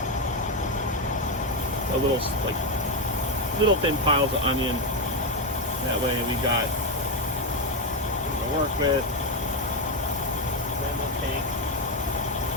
a little little thin piles of onion. That way we got something to work with. Then we'll take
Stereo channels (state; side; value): normal; both; correlation 0.07